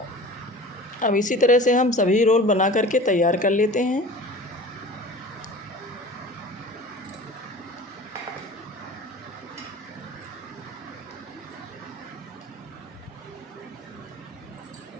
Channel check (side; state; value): both; normal; correlation 0.39